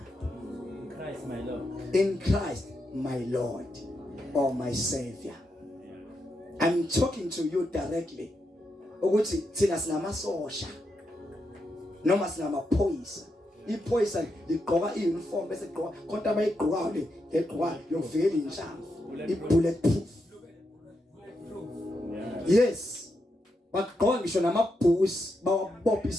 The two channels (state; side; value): normal; both; correlation 0.84